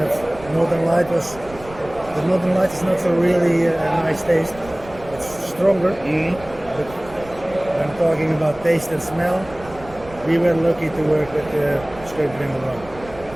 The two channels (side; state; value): right; noise; rumble, 19 dB below the sound